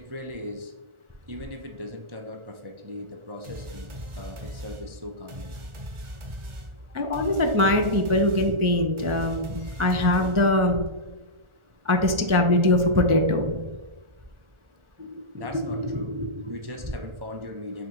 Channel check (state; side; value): late; left; 1.4 ms